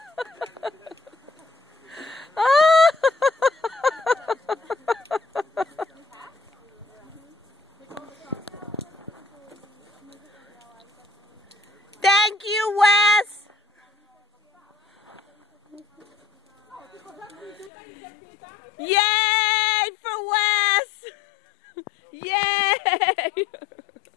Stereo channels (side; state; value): right; drops out; at 17.7 s